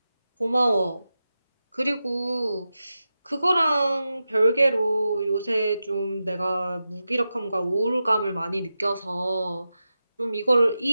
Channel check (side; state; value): both; inverted; correlation -0.92